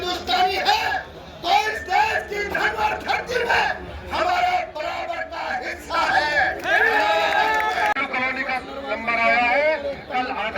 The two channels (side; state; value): both; identical; correlation 1.00